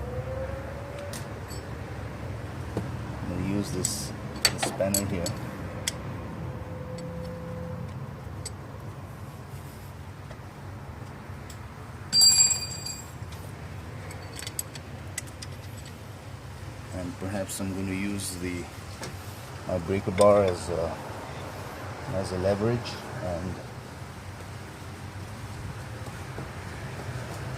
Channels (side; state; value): both; identical; correlation 1.00